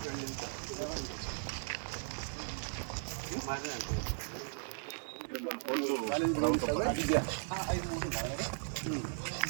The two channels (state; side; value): silent; left; digital silence